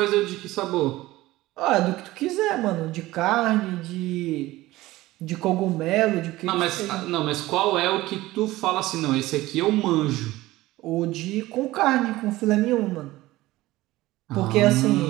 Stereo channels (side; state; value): left; quieter; 17.8 dB